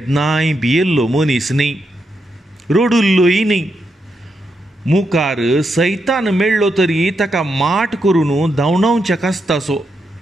भियेल्लो मनीस न्ही, रडुल्लोय न्ही. मुखार सैतान मेळ्ळो तरी ताका माट करून धांवडावचें आसतासो.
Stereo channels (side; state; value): both; normal; correlation 0.83